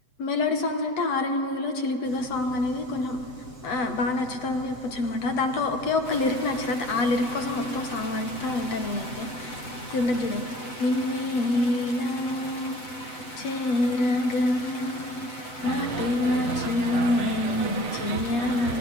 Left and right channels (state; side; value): late; right; 7.9 ms